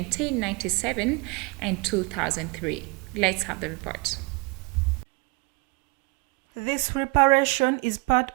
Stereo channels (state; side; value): quieter; left; 27.7 dB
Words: and 2003. Let's have the report. This reparation is part